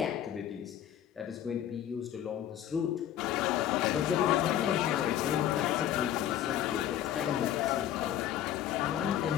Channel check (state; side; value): quieter; right; 11.1 dB